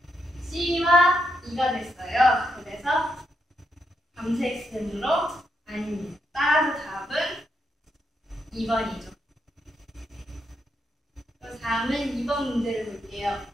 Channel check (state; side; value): normal; both; correlation 0.81